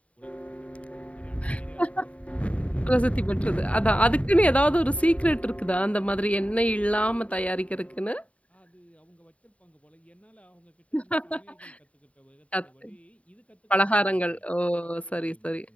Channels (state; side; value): late; right; 0.065 ms